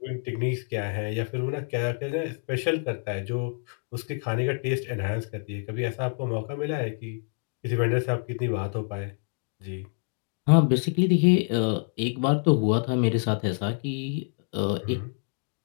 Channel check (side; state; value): right; silent; 58 dB below the other